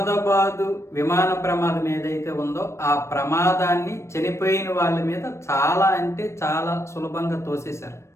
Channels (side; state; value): right; late; 0.13 ms